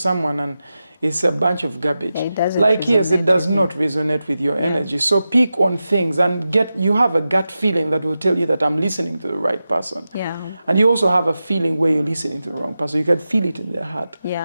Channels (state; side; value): inverted; both; correlation -0.92